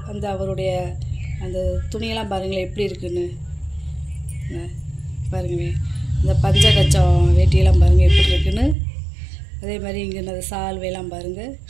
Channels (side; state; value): left; drops out; at 8.8 s